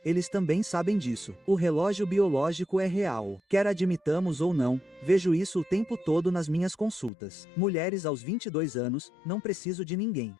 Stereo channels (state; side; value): drops out; right; at 7.1 s